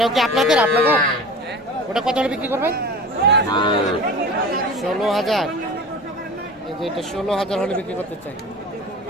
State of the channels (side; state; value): both; normal; correlation 0.36